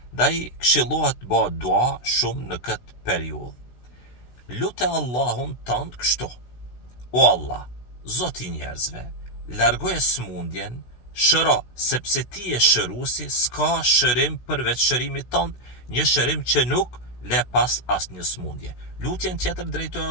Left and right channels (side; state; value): right; late; 16 ms